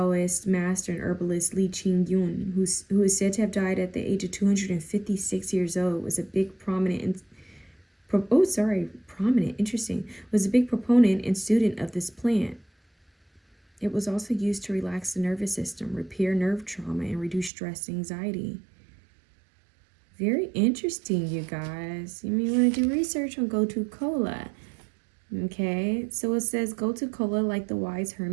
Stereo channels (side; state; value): left; drops out; at 17.5 s